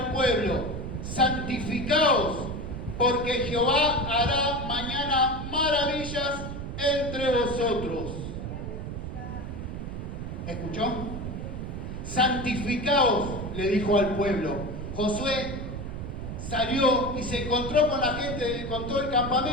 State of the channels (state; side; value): noise; right; rumble, 6 dB below the sound